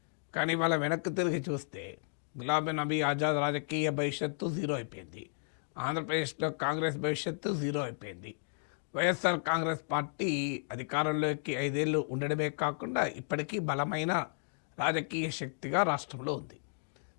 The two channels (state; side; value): silent; right; digital silence